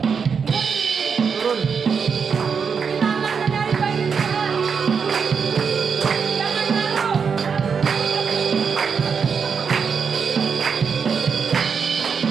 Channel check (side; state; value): left; quieter; 6.1 dB